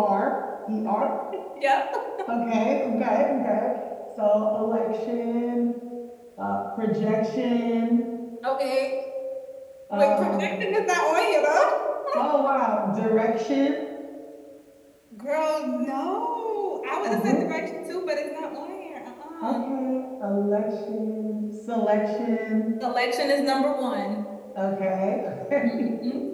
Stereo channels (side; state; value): both; identical; correlation 1.00